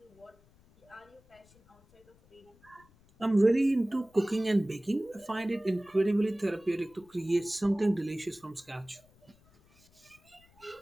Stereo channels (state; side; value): noise; left; rumble, 30 dB below the sound